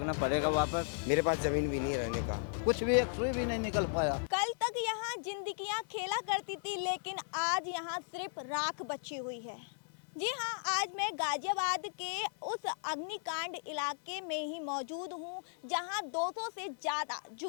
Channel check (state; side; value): silent; right; digital silence